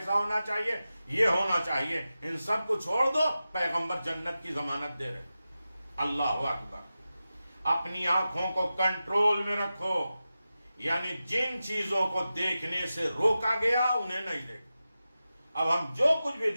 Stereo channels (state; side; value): inverted; both; correlation -0.93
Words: ہونا چاہیے، یہ ہونا چاہیے، ان سب کو چھوڑ دو. پیغمبر جنت کی ضمانت دے رہے. اللہ اکبر. اپنی آنکھوں کو کنٹرول میں رکھو. یعنی جن چیزوں کو دیکھنے سے روکا گیا انہیں نہیں دیکھیں۔ اب ہم جو کچھ بھی